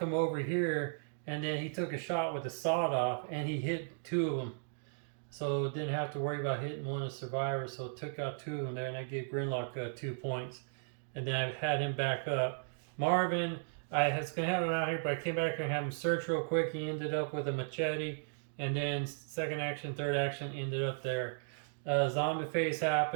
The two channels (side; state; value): left; silent; digital silence